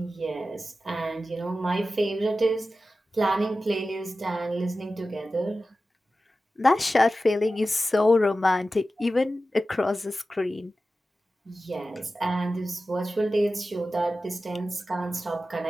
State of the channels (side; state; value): both; normal; correlation 0.94